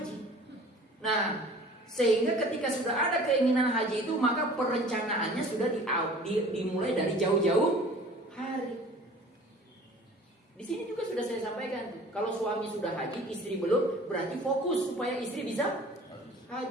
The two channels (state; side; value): normal; both; correlation 0.47